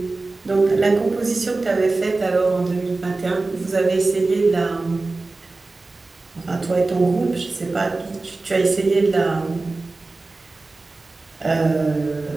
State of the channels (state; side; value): quieter; left; 3.4 dB